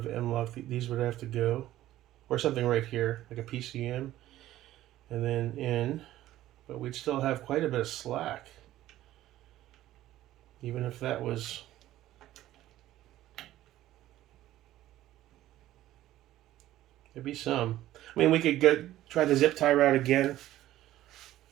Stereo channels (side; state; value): left; quieter; 14.3 dB